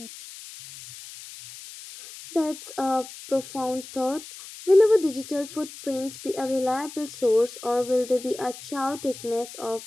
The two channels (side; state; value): left; noise; hiss, 15 dB below the sound